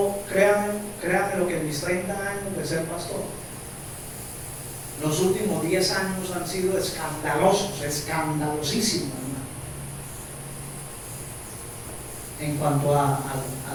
créanme lo que en mis 30 años de ser pastor, los últimos 10 años han sido escandalosos, escandalosísimos, hermano, en cuanto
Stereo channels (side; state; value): both; identical; correlation 1.00